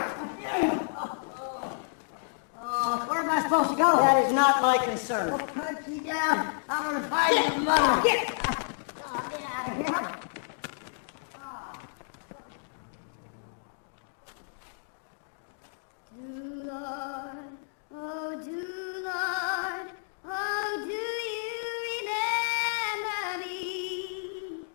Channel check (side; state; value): right; silent; digital silence